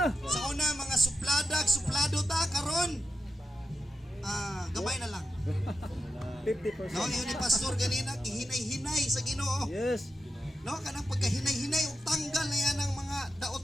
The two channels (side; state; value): both; normal; correlation 0.89